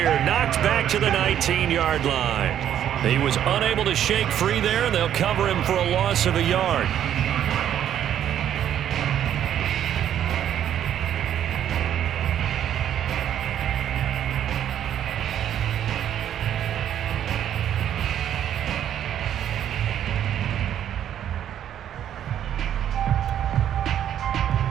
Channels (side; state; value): left; quieter; 10.3 dB